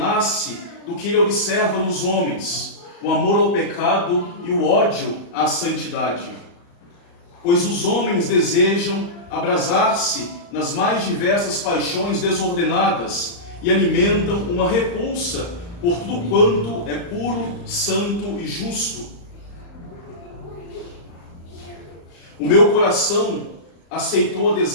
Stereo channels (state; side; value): late; right; 35 ms